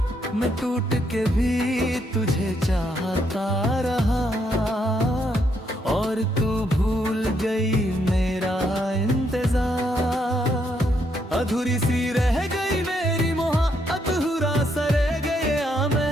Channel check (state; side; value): normal; both; correlation 0.75